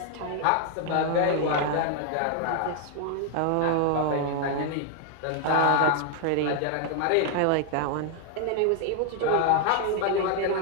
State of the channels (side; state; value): both; different; correlation 0.01